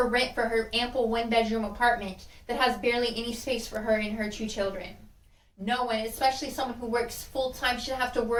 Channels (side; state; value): both; identical; correlation 1.00